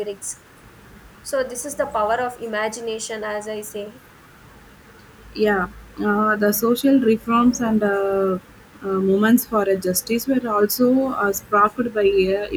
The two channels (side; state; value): both; identical; correlation 1.00